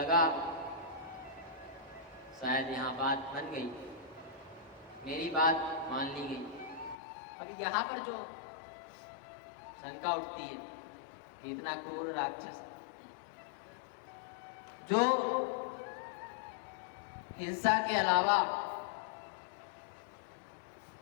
शायद यहाँ बात बन गई, मेरी बात मान ली गई। अभी यहाँ पर जो शंका उठती है कि इतना क्रूर राक्षस जो हिंसा के अलावा,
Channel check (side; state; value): right; drops out; at 7.0 s